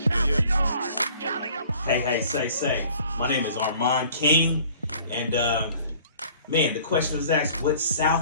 Cali, Hey, say. My name is Armand King. And, man, the question was asked, what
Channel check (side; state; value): both; inverted; correlation -0.52